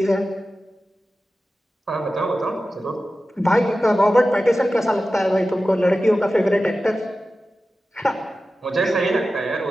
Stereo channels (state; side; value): normal; both; correlation 0.94